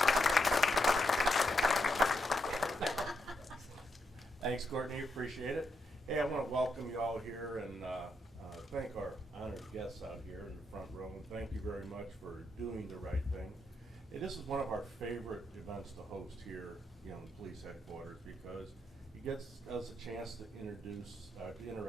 Thanks, Courtney, appreciate it. Hey, I want to welcome you all here and thank our honored guests out here in the front row, and thank you very much for doing the right thing. Hey, this is one of our favorite events to host here, in the police headquarters, because it gets us a chance to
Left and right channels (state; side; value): normal; both; correlation 0.80